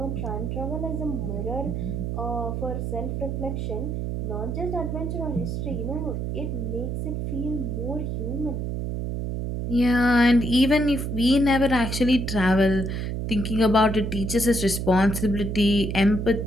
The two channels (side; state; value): right; noise; hum, 2 dB below the sound